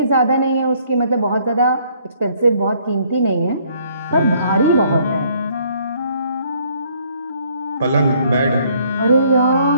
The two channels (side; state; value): both; inverted; correlation -0.64